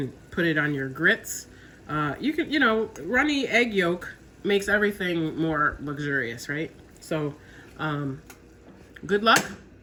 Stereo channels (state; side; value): identical; both; correlation 1.00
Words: put it on your grits. You can, you know, runny egg yolk makes everything more luxurious, right? So good luck.